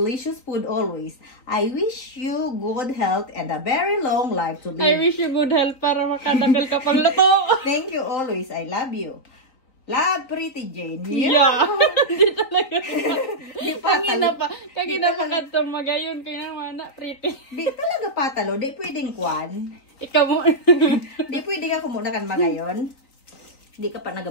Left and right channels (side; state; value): right; late; 3.9 ms